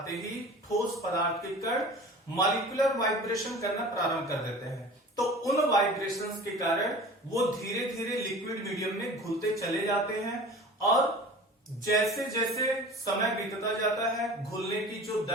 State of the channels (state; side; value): normal; both; correlation 0.40